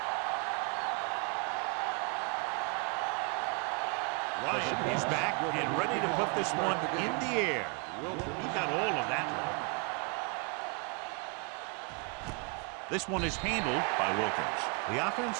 Ryan is back and ready to put this one in the air. He got all of that one. This one is handled by Wilkins. The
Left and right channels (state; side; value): quieter; left; 35.3 dB